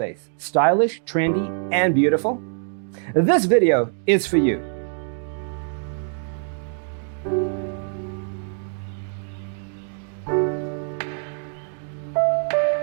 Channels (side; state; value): left; silent; 59 dB below the other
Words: stylish, trendy, and beautiful? This video is for you.